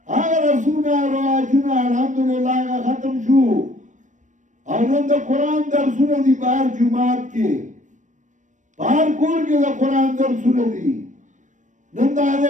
هغه رسمونه او رواجونه الحمدلله هغه ختم شو او نن د قرآن درسونه دي په هر جومات کې په هر کور کې د قرآن درسونه دي نن د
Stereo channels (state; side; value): late; left; 0.36 ms